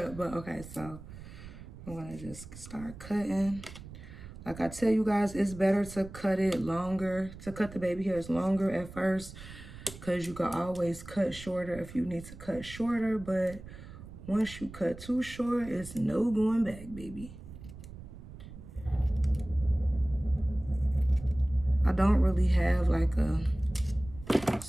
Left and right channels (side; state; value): right; noise; rumble, 15 dB below the sound